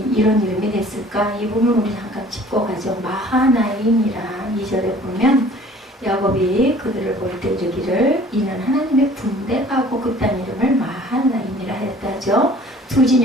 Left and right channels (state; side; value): normal; both; correlation 0.51